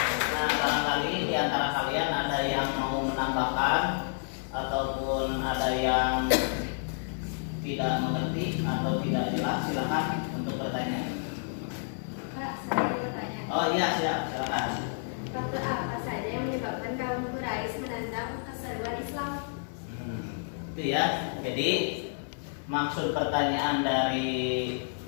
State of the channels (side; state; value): right; silent; 58 dB below the other